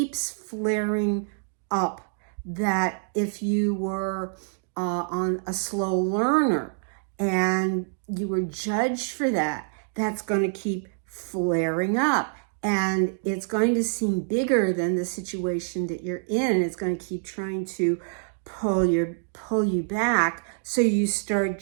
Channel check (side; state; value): left; silent; digital silence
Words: flaring up. That if you were on a slow learner and you were judged for that, that's going to keep flaring up. And it's going to seem bigger than the situation that you're in. It's going to keep trying to pull you back. So you start